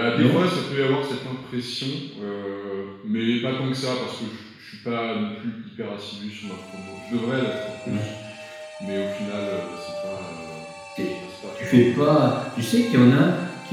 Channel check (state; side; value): identical; both; correlation 1.00